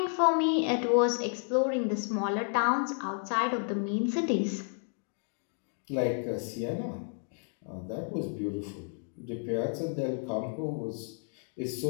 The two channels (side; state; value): right; silent; 57 dB below the other